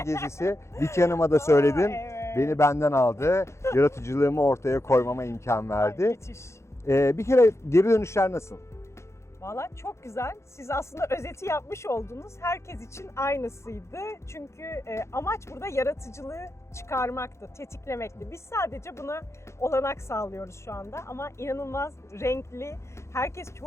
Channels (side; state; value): right; late; 0.13 ms